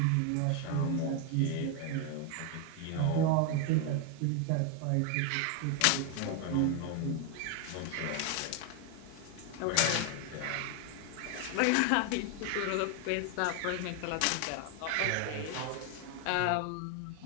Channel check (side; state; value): both; different; correlation 0.01